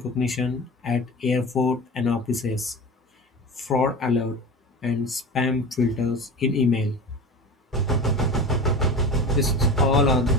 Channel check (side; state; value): both; normal; correlation 0.32